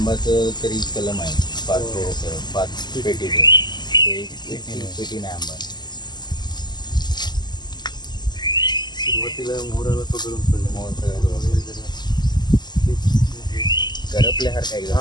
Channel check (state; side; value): late; right; 0.21 ms